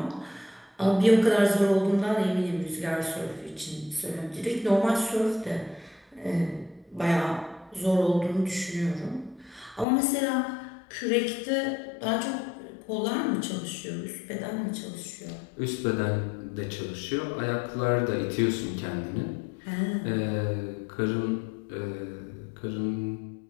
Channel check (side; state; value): right; drops out; at 9.9 s